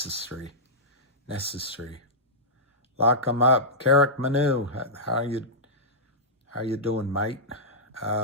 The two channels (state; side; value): normal; both; correlation -0.12